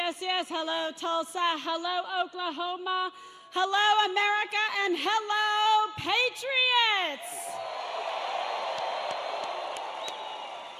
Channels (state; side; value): identical; both; correlation 1.00